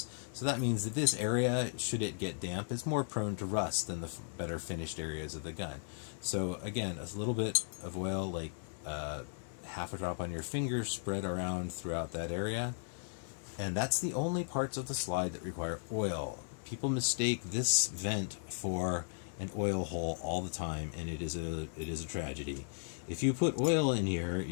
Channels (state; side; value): silent; right; 54 dB below the other